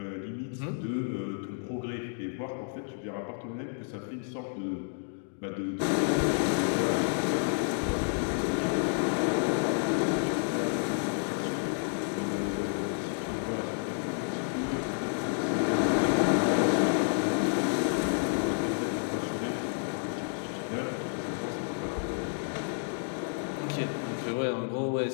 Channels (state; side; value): silent; right; 57 dB below the other